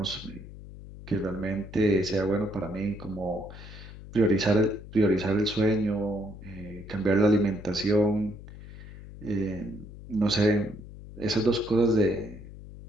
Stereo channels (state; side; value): noise; left; hum, 15 dB below the sound